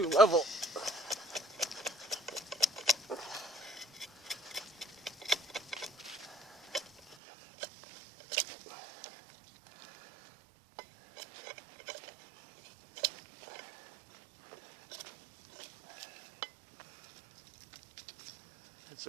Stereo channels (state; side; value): drops out; left; at 7.2 s